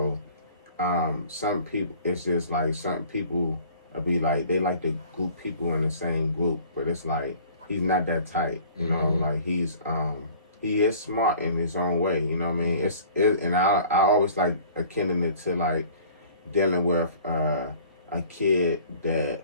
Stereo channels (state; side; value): inverted; both; correlation -0.49